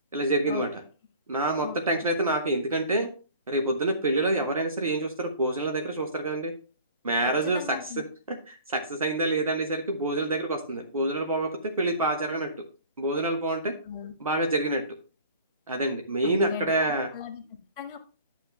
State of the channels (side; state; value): both; inverted; correlation -0.44